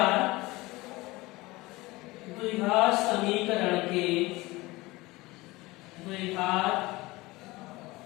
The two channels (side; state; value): right; quieter; 21.1 dB